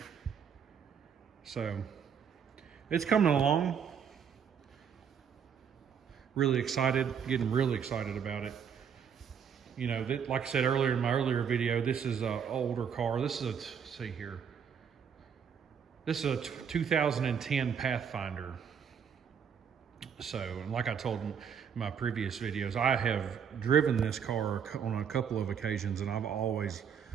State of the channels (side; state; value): left; quieter; 7.4 dB